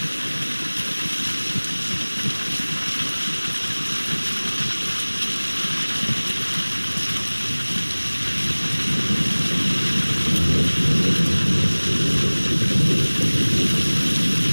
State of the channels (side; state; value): both; inverted; correlation -1.00